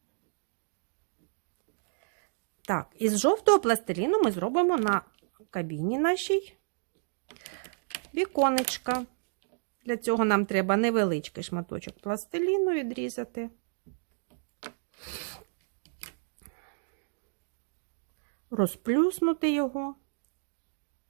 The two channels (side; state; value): left; silent; digital silence